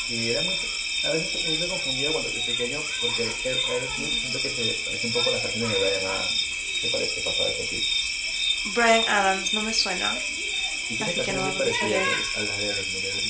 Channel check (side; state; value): both; identical; correlation 1.00